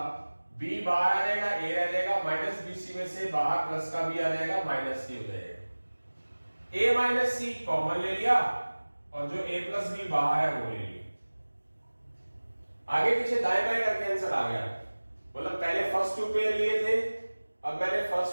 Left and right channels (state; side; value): inverted; both; correlation -1.00